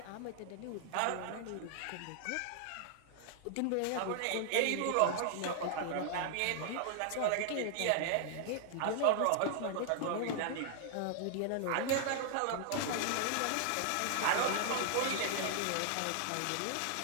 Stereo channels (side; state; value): both; different; correlation 0.00